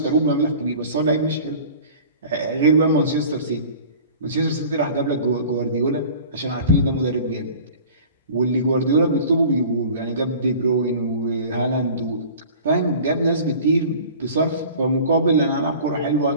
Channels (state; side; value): inverted; both; correlation -0.43